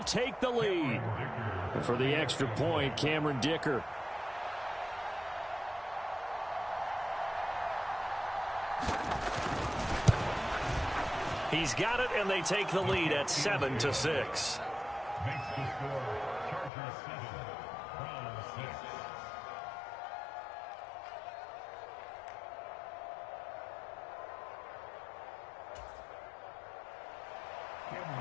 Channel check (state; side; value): drops out; right; at 16.7 s